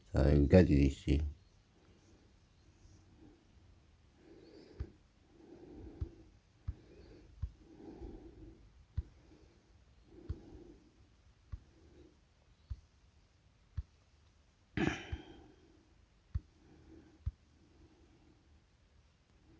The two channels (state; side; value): identical; both; correlation 1.00